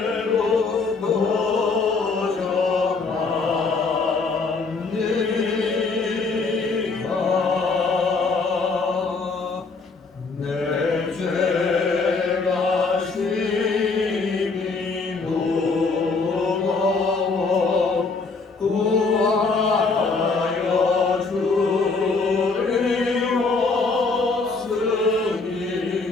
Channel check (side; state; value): right; quieter; 4.2 dB